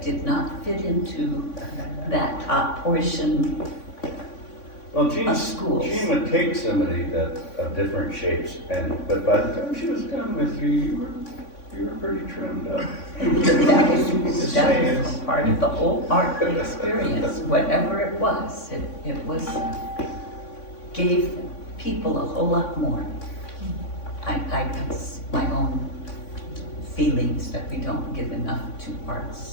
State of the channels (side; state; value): right; late; 3.5 ms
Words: did not fit into that top portion Well, of schools. Jean would take somebody of different shapes, but by the time she was done with you, you were pretty trimmed up. That was part of the whole art experience, whatever it was. It was, gave people a whole lot more. That's my own feelings that we don't give enough to